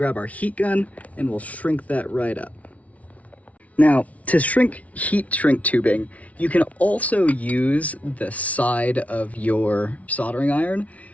our heat gun and we'll shrink that right up. Now, to shrink heat shrink tubing, you can also use the side of your soldering iron,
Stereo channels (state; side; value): late; right; 0.067 ms